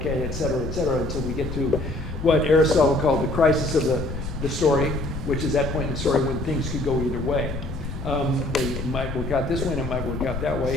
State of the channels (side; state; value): left; noise; rumble, 7 dB below the sound